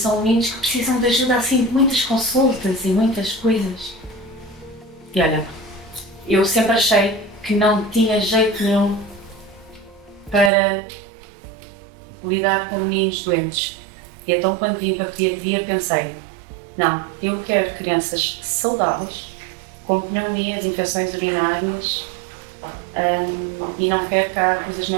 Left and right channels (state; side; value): drops out; left; at 10.5 s